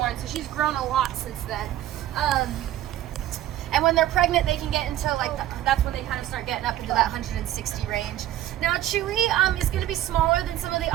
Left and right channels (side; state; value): left; quieter; 13.2 dB